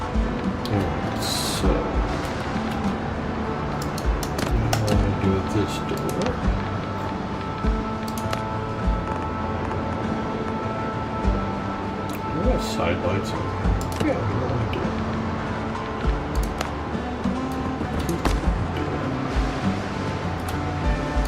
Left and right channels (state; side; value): identical; both; correlation 1.00